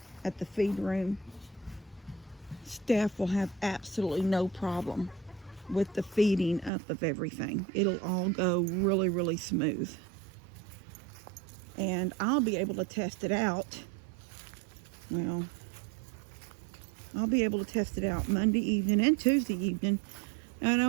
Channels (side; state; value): left; drops out; at 6.7 s